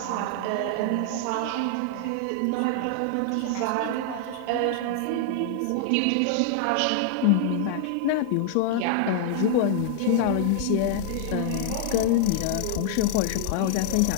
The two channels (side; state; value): both; different; correlation 0.00